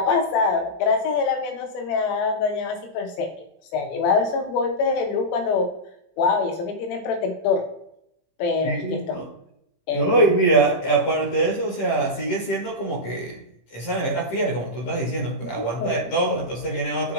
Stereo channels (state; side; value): late; right; 18 ms